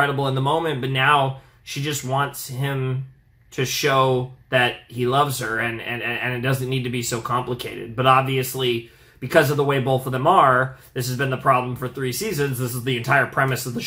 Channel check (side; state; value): both; identical; correlation 1.00